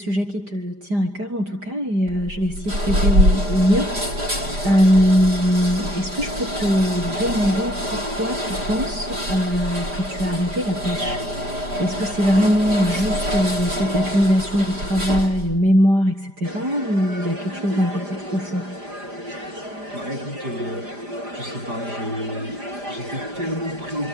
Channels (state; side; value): late; left; 5.0 ms